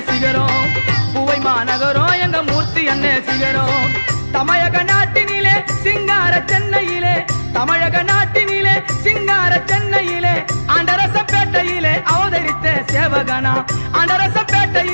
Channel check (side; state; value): both; inverted; correlation -1.00